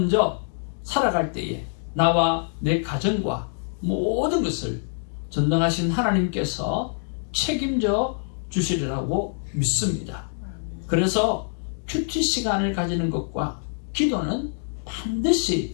살아갈 때에 나와 내 가정과 모든 것을 전능하신 하나님께서 책임져 주시리라고 믿습니다. 그래서 큐티 시간을 가지는 것과 기도는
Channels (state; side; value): silent; right; 62 dB below the other